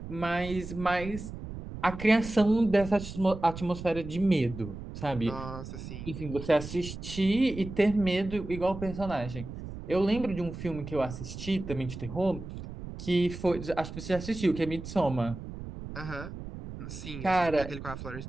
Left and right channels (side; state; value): right; noise; rumble, 10 dB below the sound